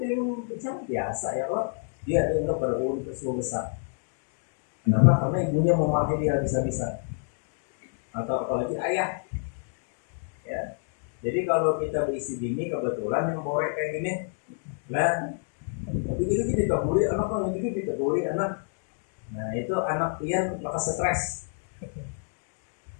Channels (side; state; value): right; silent; 59 dB below the other